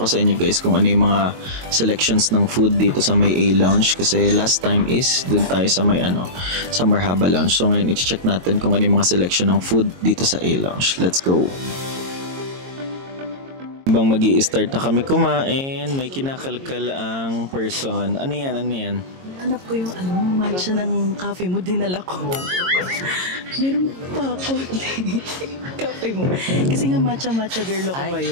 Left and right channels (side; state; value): left; late; 22 ms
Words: sa inyo guys kung ano yung mga selections ng food dito sa may A-Lounge kasi last time is dun tayo sa may sa Marhaba Lounge. So ngayon i-check natin kung ano yung mga selection ng food dito sa A-Lounge. Let's go. Habang magi-start na kami kumain, may kinakalkal ang person. Ano yan? Ano yan? Hanap ko yung matcha ng cafe mo, dinala ko. Meron pa ako. Cafe mo. Kasi nga matcha girl ako